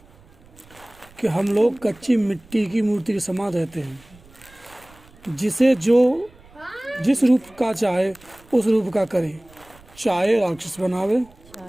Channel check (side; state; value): right; noise; rumble, 26 dB below the sound